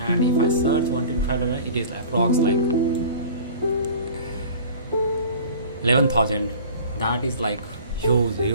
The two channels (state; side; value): inverted; both; correlation -0.43